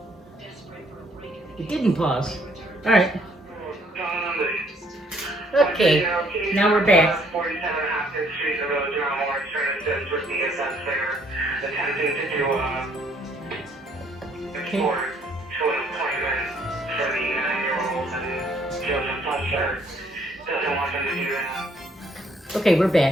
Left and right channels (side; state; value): both; normal; correlation 0.65